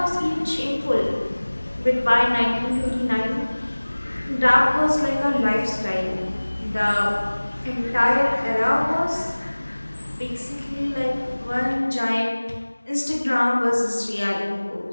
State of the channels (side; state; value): both; inverted; correlation -1.00